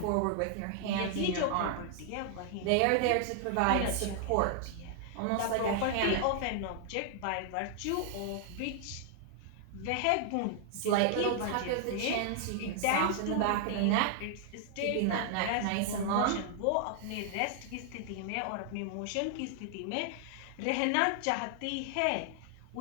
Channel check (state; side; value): different; both; correlation 0.00